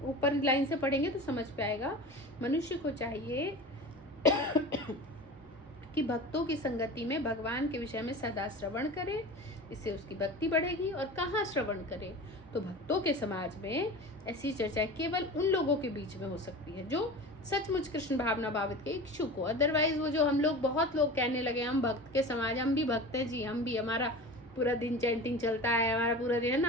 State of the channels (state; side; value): normal; both; correlation 0.34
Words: ऊपर लाइन से पढ़ेंगे तो समझ पे आएगा। मनुष्य को चाहिए कि भक्तों की संगति में भगवान के विषय में सदा श्रवण करे, इससे उसकी भक्ति बढ़ेगी। और कहाँ श्रवण करे? तो भक्तों के समाज में ऐसी चर्चा केवल उन लोगों के बीच में हो सकती है जो सचमुच कृष्ण भावना भावित के इच्छुक हो। अदरवाइज वो जो हम लोग, बहुत लोग कहने लगे हम भक्त के समाज, हम भी भक्त हैं जी, हम भी, हमारा पूरा दिन चैंटिंग चलता है, हमारा पूरा दिन, है